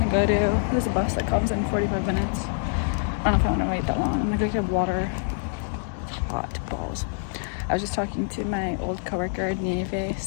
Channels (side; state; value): right; silent; 61 dB below the other